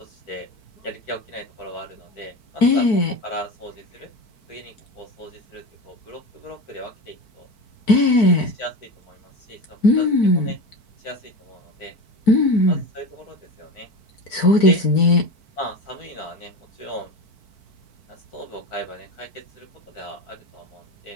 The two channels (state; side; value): late; right; 4.5 ms